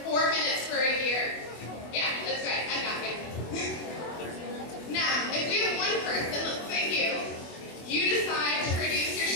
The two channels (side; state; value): right; late; 24 ms